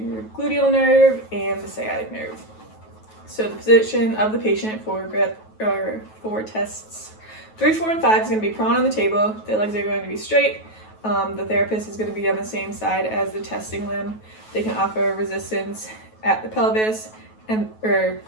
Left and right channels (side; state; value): right; late; 9.3 ms